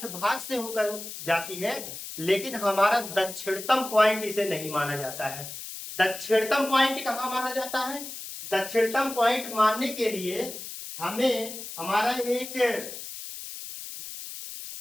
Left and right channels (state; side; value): noise; left; hiss, 10 dB below the sound